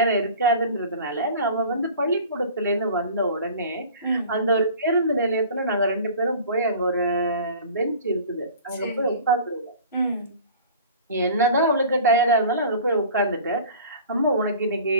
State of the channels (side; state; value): both; inverted; correlation -0.43